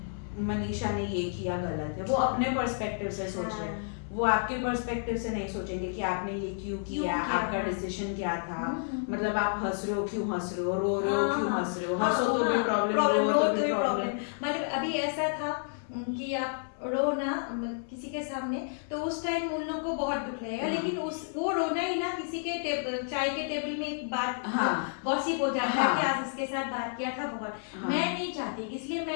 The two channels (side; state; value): right; silent; 57 dB below the other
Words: मनीषा ने ये किया गलत है, वो अपने पर्सपेक्टिव से सोच रहे हैं, वो आपके पर्सपेक्टिव से नहीं सोचेंगे कि आपने ये क्यों किया, आपका डिसीजन क्या था, मतलब आप हंस रहे हो क्यों हंस रहे हो, रो रहे हो क्यों हंस रहे हो, हंसो तो भी प्रॉब्लम, रो तो भी प्रॉब्लम। मतलब अभी ऐसा था कि आप रो ना किसी के सामने, तो उस टाइम उन लोगों को बहुत दुख लगेगा, लेकिन वो रोना ही ना किसी के चाय के टेबल में एक बात गॉसिप हो जाता है कि आज इसके साथ बात किया था बहुत, मैं नहीं चाहती, इसलिए